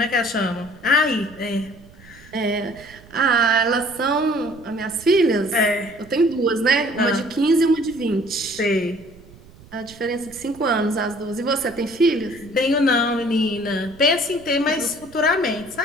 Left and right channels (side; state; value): right; noise; rumble, 22 dB below the sound